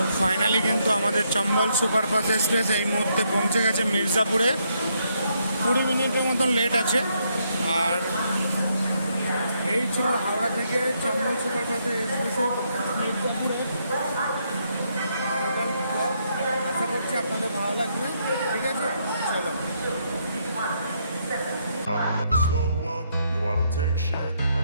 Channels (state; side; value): inverted; both; correlation -0.75